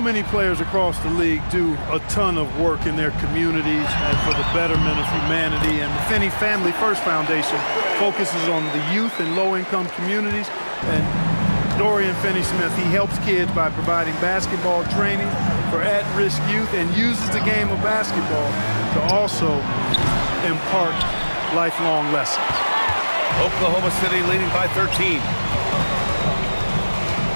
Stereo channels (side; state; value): both; inverted; correlation -1.00